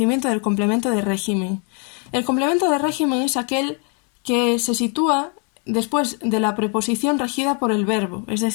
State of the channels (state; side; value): quieter; right; 37.7 dB